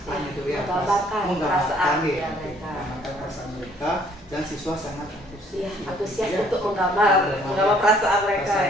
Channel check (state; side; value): normal; both; correlation 0.61